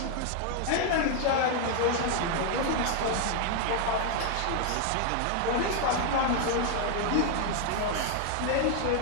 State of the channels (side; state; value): both; different; correlation 0.00